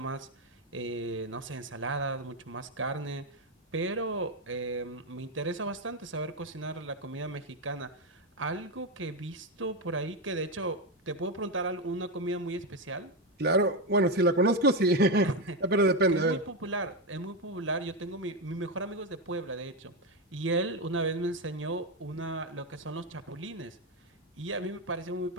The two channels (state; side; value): normal; both; correlation 0.09